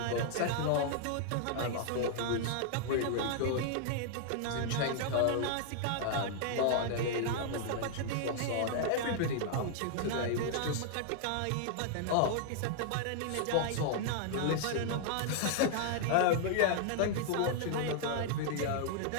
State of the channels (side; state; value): both; different; correlation -0.01